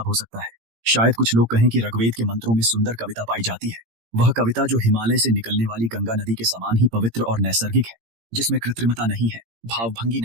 हो सकता है? शायद कुछ लोग कहें कि ऋग्वेद के मंत्रों में सुंदर कविता पाई जाती है। वह कविता जो हिमालय से निकलने वाली गंगा नदी के समान ही पवित्र और नैसर्गिक है, जिसमें कृत्रिमता नहीं है, भावभंगी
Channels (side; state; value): left; late; 18 ms